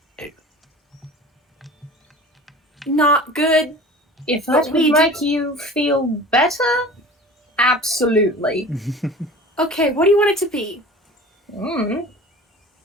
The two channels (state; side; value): normal; both; correlation 0.40